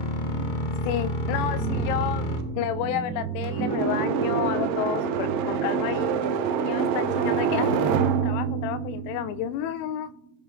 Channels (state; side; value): late; right; 28 ms